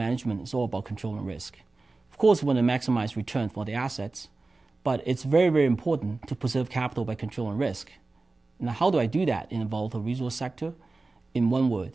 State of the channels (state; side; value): quieter; left; 3.5 dB